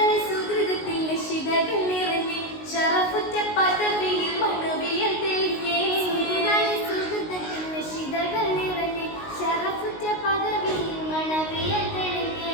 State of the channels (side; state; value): right; late; 19 ms